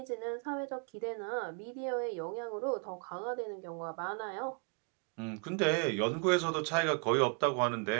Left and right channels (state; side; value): quieter; left; 37.5 dB